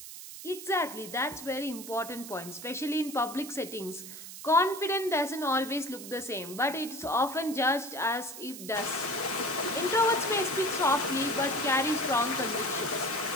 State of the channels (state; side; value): noise; right; hiss, 12 dB below the sound